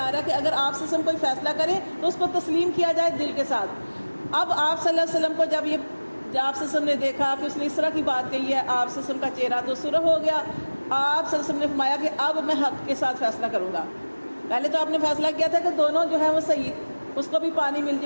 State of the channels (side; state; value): both; inverted; correlation -1.00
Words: رہا ہے کہ اگر آپ سے کوئی فیصلہ کرے تو اس کو تسلیم کیا جائے دل کے ساتھ۔ اب آپ صلی اللہ علیہ وسلم کو جب آپ صلی اللہ علیہ وسلم نے دیکھا کہ اس نے اس طرح کی بات کہی ہے، آپ صلی اللہ علیہ وسلم کا چہرہ تو سرخ ہو گیا۔ آپ صلی اللہ علیہ وسلم نے فرمایا کہ اب میں حق کے ساتھ فیصلہ کروں گا۔ پہلے تو آپ نے فیصلہ کیا تھا کہ دونوں جو ہیں وہ صحیح، اس کو بھی پانی مل